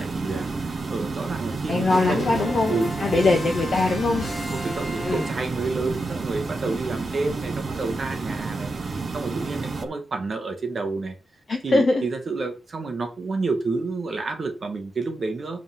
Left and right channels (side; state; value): both; normal; correlation 0.86